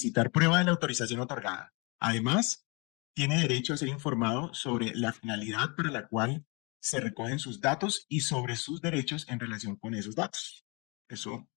prueba de la autorización otorgada. Además, tiene derecho a ser informado sobre la finalidad para la cual se recogen sus datos y sobre sus derechos en relación con esos datos. Eso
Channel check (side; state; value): right; quieter; 30.3 dB